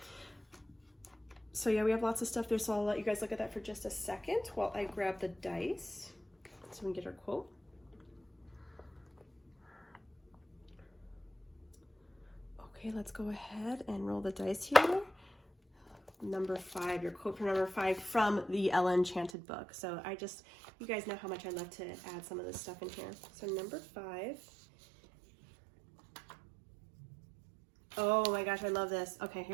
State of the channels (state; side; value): drops out; left; at 19.3 s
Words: So yeah, we have lots of stuff there, so I'll let you guys look at that for just a second while I grab the dice so we can get our quote. Okay, let's go ahead and roll the dice here. Number 5, your quote for number 5 from the Ella Enchanted book. So you guys know how much I love to add some of this stuff in here. So number 5. Oh my gosh, I love this. Okay,